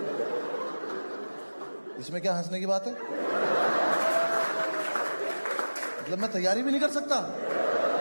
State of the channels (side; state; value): both; inverted; correlation -1.00